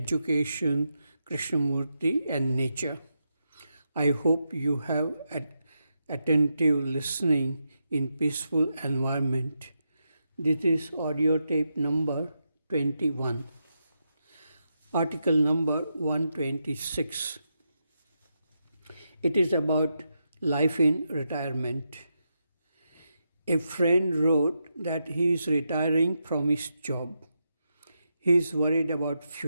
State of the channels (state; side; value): inverted; both; correlation -0.85